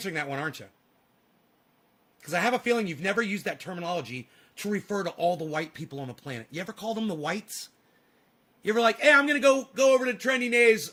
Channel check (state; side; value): identical; both; correlation 1.00